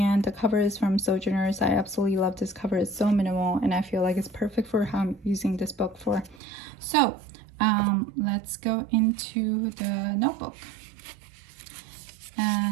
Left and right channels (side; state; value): left; drops out; at 6.4 s